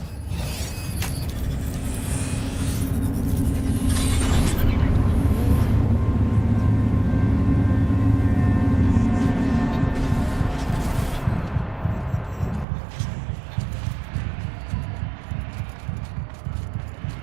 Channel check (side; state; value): left; drops out; at 12.7 s